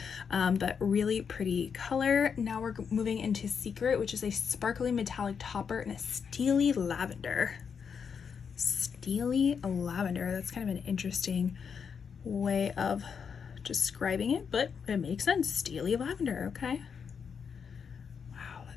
but really pretty color. Now we're moving into Secret, which is a sparkly metallic topper and a steely lavender. Steely lavender, that's kind of an interesting way of describing it, but it makes sense. Steely lavender, okay. Wow,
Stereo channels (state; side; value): quieter; right; 6.6 dB